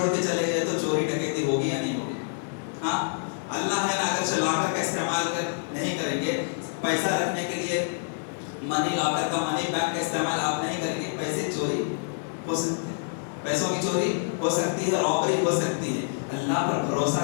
کے چلے گئے تو چوری ڈکیتی ہوگی یا نہیں ہوگی؟ ہاں, اللہ ہے نا, اگر لاکر کا استعمال نہیں کریں گے, پیسہ رکھنے کے لیے منی لاکر کا, منی بینک کا استعمال آپ نہیں کریں گے, پیسے چوری ہو سکتے ہیں, پیسوں کی چوری ہو سکتی ہے, رابری ہو سکتی ہے. اللہ پر بھروسہ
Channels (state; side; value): silent; right; digital silence